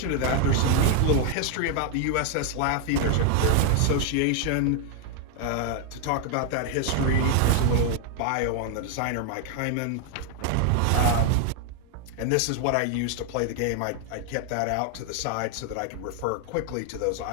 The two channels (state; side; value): different; both; correlation 0.00